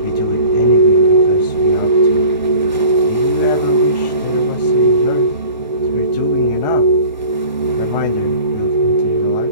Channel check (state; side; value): inverted; both; correlation -0.44